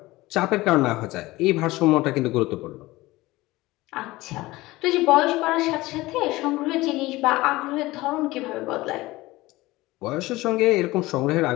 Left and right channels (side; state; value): right; quieter; 19.4 dB